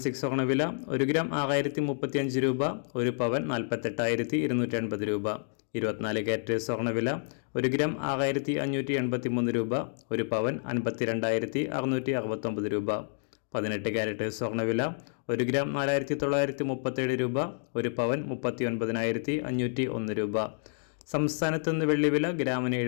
സ്വർണ്ണവില 1 ഗ്രാം 6035 രൂപ, 1 പവൻ 48,280 രൂപ. 24 കാരറ്റ് സ്വർണ്ണവില 1 ഗ്രാം 6583 രൂപ, 1 പവൻ 52,669 രൂപ. 18 കാരറ്റ് സ്വർണ്ണവില 1 ഗ്രാം 4937 രൂപ, 1 പവൻ 39,501 രൂപ. സംസ്ഥാനത്ത് നിന്ന് വെള്ളിവില ഗ്രാമിന്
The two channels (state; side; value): silent; right; digital silence